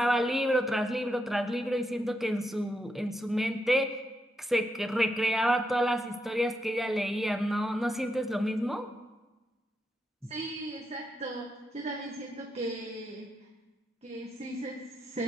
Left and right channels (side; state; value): both; normal; correlation 0.83